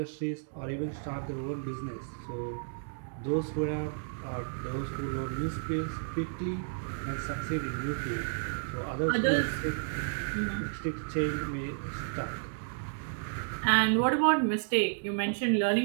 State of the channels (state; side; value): silent; left; digital silence